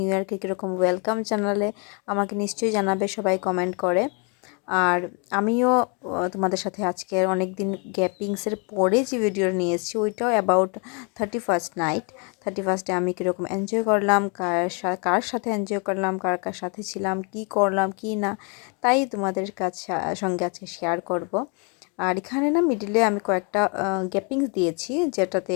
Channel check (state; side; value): quieter; right; 35.6 dB